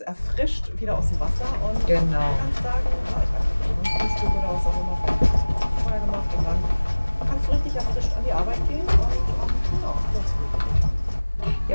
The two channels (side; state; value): both; inverted; correlation -1.00